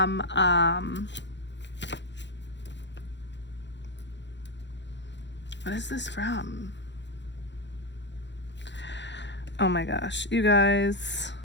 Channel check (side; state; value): right; late; 0.52 ms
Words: what is this from? Oh my gosh, you guys.